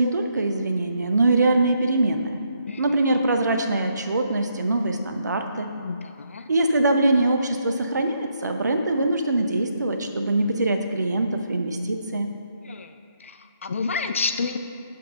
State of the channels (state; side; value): inverted; both; correlation -0.76